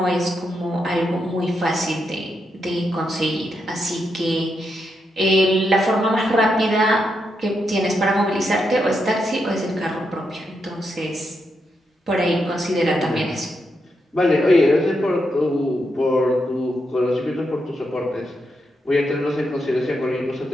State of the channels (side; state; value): both; normal; correlation 0.83